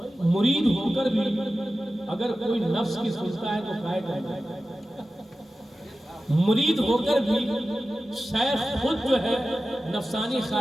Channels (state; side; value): normal; both; correlation 0.94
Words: مرید ہو کر بھی اگر کوئی نفس کی سنتا ہے تو کائے کرتا ہے، مرید ہو کر بھی شیخ خود جو ہے نفسانی